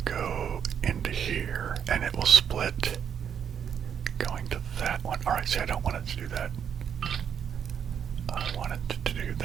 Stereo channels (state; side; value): quieter; left; 8.0 dB